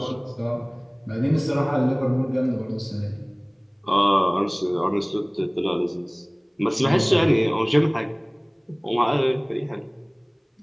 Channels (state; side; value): identical; both; correlation 1.00